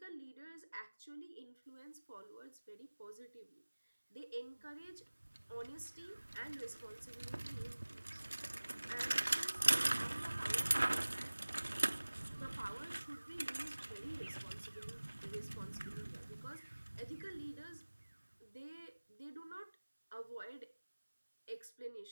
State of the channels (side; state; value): both; inverted; correlation -1.00